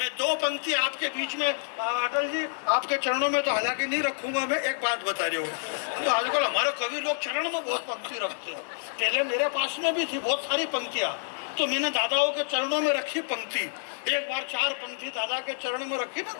दो पंक्ति आपके बीच में, अटल जी आपके चरणों में तो हालांकि नहीं रखूंगा, मैं एक बात बता रही हूँ। तो आजकल हमारे कवि लोग चरण में बहुत पंक्ति रखते हैं। पहले मेरे पास में भी थी बहुत सारी पंक्तियाँ, तो मैंने दादाओं के चरणों में रखी पंक्ति। एक बार 4 पंक्ति दादा के चरण में रखी ना,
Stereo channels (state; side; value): silent; right; 59 dB below the other